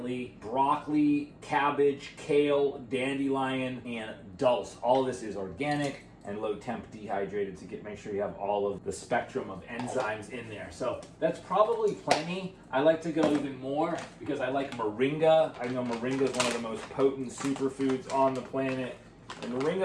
broccoli, cabbage, kale, dandelion, and dulse. All of this is organic and low temp dehydrated to make sure you have all of the spectrum of enzymes in there. So that's probably plenty. I like to go even more because I like moringa. I know moringa is one of the most potent superfoods on the planet. And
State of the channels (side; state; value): both; identical; correlation 1.00